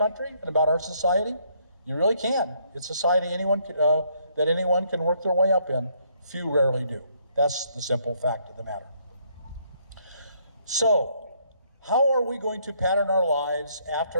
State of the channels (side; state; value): both; inverted; correlation -0.69